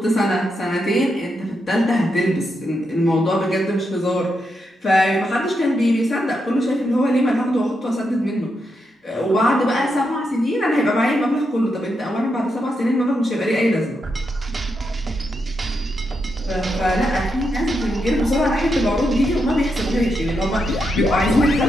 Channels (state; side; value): normal; both; correlation 0.83